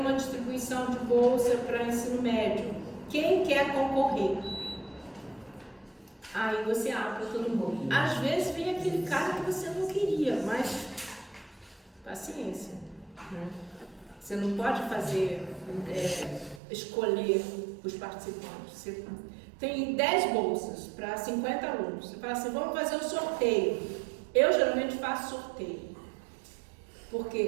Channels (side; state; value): left; drops out; at 16.6 s